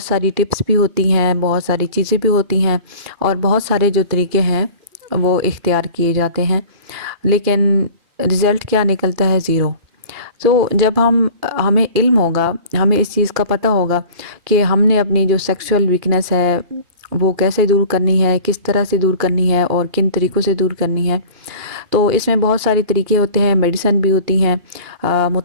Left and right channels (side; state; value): left; late; 2.8 ms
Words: सारी टिप्स भी होती हैं, बहुत सारी चीज़ें भी होती हैं और बहुत सारे जो तरीके हैं वो इख्तियार किए जाते हैं, लेकिन रिज़ल्ट क्या निकलता है? ज़ीरो। तो जब हमें इल्म होगा, हमें इस चीज़ का पता होगा कि हमने अपनी जो सेक्सुअल वीकनेस है वो कैसे दूर करनी है, किस तरह से दूर करनी है और किन तरीक़ों से दूर करनी है। तो इसमें बहुत सारे तरीके होते हैं, मेडिसिन भी होती हैं,